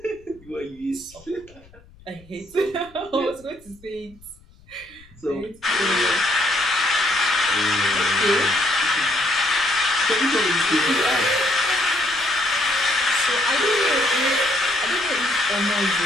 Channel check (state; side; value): noise; left; rumble, 26 dB below the sound